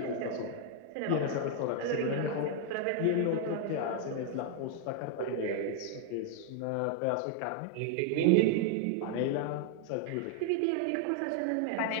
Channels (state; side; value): different; both; correlation 0.00